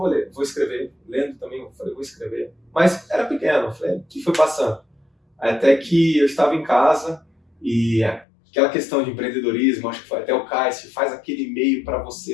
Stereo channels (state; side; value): drops out; right; at 8.2 s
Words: escrever. Lendo também, eu falei, vou escrever. Mas era pequeno, eu falei, o que foi passando? Até que eu estava em casa e aquela questão de empreendedorismo, acho que foi até o Cássio, faz aquele e-mail para